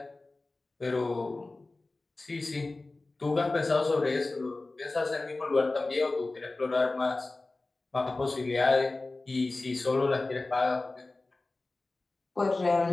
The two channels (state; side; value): quieter; right; 3.2 dB